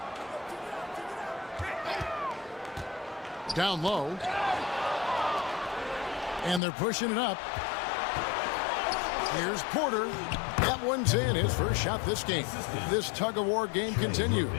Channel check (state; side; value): drops out; right; at 6.6 s